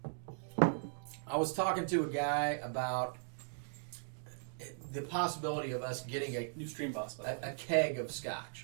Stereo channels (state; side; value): silent; left; digital silence